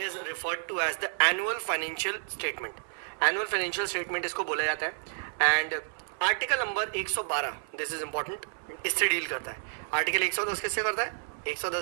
referred to as the annual financial statement. Annual financial statement इसको बोला जाता है। And article number 112, this is important, इससे डील करता है। आर्टिकल 110 किससे करता है?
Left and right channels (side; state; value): left; silent; 58 dB below the other